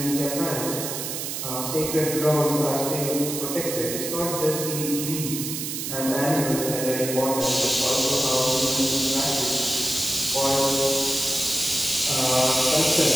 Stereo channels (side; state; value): right; noise; hiss, 5 dB below the sound